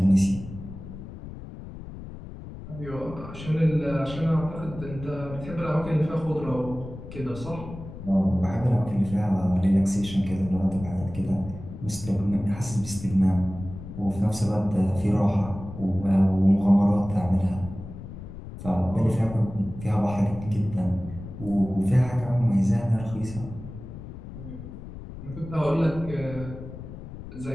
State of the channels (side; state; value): left; noise; rumble, 12 dB below the sound